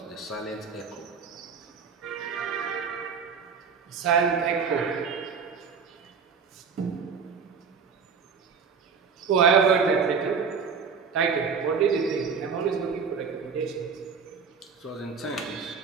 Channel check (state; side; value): quieter; left; 5.9 dB